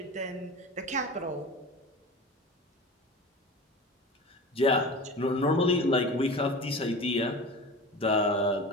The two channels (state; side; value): normal; both; correlation 0.33